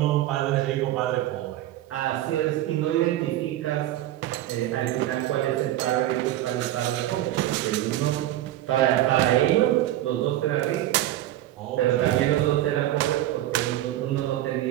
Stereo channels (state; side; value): quieter; left; 14.0 dB